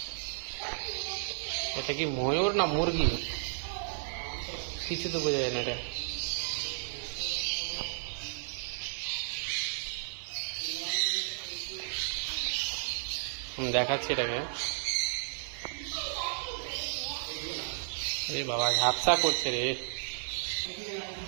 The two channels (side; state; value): left; silent; 56 dB below the other